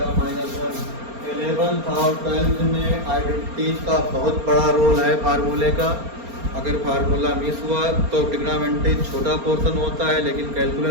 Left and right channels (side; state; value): left; late; 4.3 ms